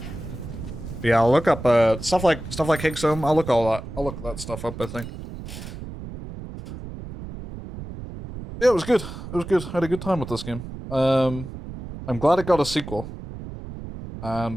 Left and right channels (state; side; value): noise; right; rumble, 11 dB below the sound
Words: Yeah, I'll look up stuff like Higgs home. I'll look that stuff up, I think. Yeah, it was good. It was good. I had a good time with this game. I'm glad it got a sequel. And